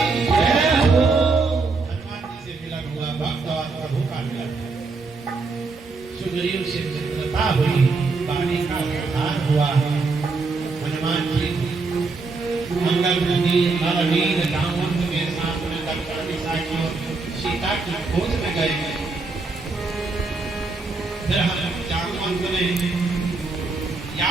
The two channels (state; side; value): quieter; left; 4.0 dB